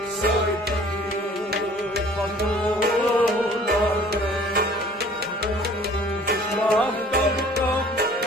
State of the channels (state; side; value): normal; both; correlation 0.51